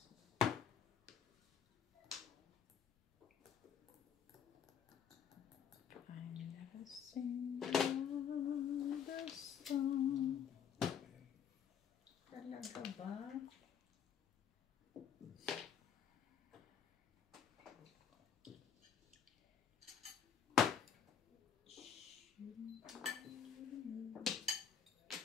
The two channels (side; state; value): right; quieter; 7.8 dB